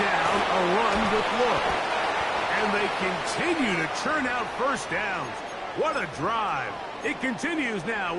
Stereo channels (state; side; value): identical; both; correlation 1.00